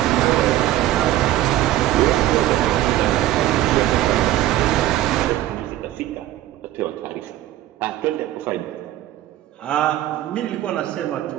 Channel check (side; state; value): left; quieter; 14.1 dB